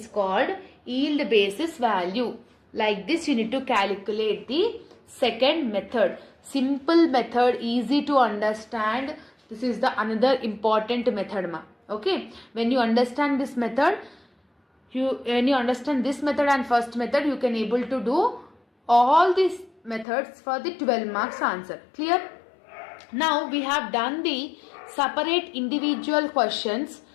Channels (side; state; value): right; drops out; at 20.1 s